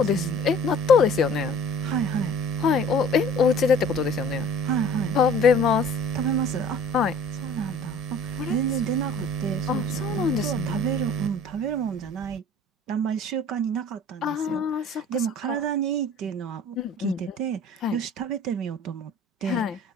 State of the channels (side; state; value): both; normal; correlation 0.48